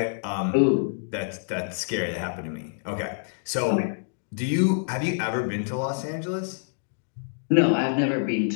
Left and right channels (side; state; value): right; silent; digital silence